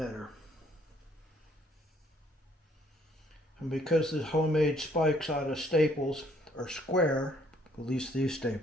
And because the homemade spikes out of staples are square, at least these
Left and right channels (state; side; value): normal; both; correlation 0.64